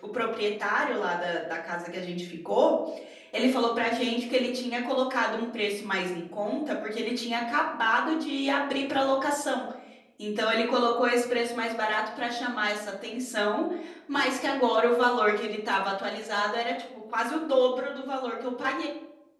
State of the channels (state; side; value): identical; both; correlation 1.00